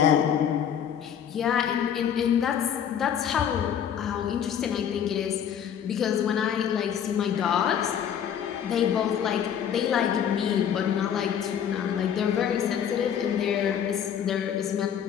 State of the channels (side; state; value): right; quieter; 8.8 dB